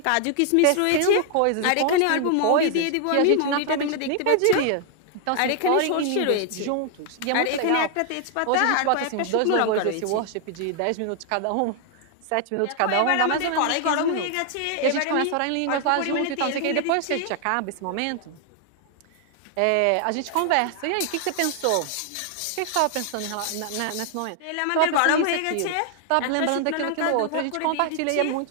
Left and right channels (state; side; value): different; both; correlation 0.00